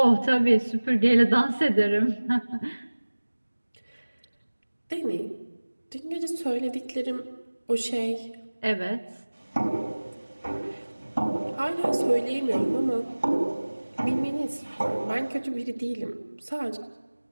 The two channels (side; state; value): both; inverted; correlation -1.00